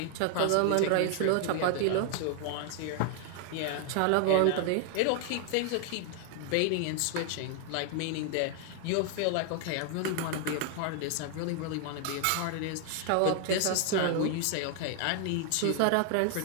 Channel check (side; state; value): both; different; correlation 0.00